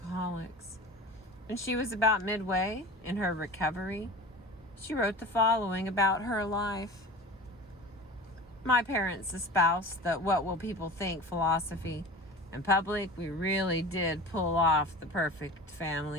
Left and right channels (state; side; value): normal; both; correlation 0.36